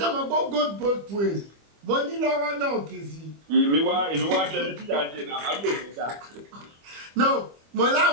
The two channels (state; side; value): late; left; 25 ms